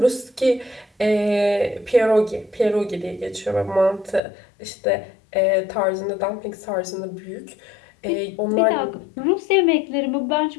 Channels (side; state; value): right; drops out; at 4.2 s